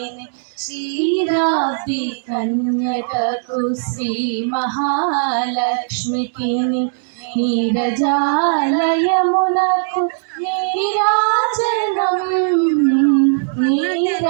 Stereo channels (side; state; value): left; silent; digital silence